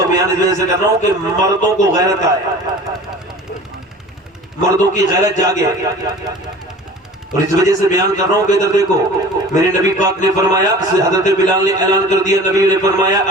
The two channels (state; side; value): normal; both; correlation 0.41